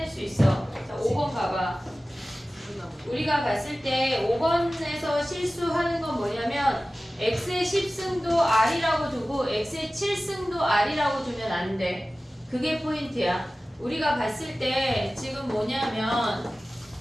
수 있어. 자, 5번 가봐. 우리가 봤을 때 5번에서 실수하는 건 뭐냐면 x의 10승도 r이라고 두고 x의 7승도 r이라고 두면 안 돼. 그게 포인트야. 우리가 봤을 때 지금 뭐냐면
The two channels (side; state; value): both; normal; correlation 0.96